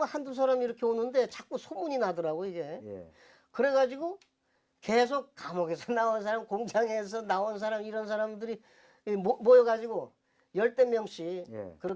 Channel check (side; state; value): both; identical; correlation 1.00